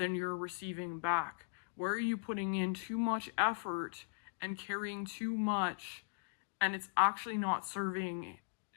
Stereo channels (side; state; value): right; silent; digital silence